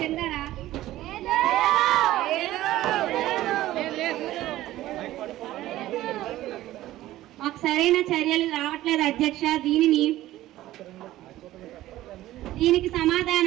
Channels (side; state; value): left; quieter; 15.2 dB